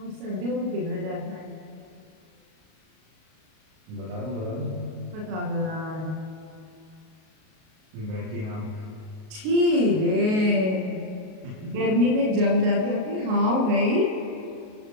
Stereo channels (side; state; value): left; late; 38 ms